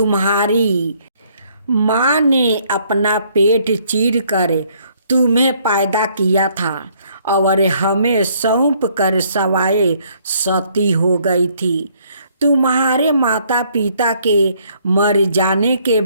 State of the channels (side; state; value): both; inverted; correlation -0.65